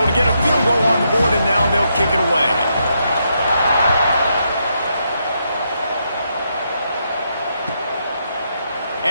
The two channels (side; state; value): both; inverted; correlation -0.80